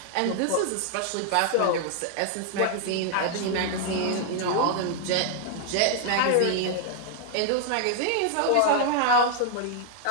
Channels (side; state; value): both; different; correlation -0.01